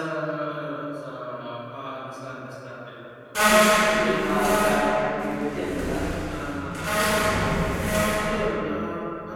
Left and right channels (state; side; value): identical; both; correlation 1.00